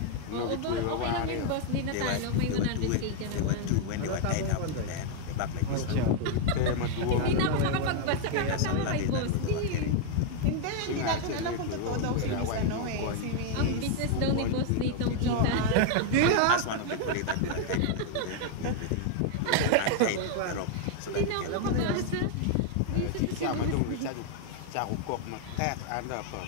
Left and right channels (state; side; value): different; both; correlation 0.00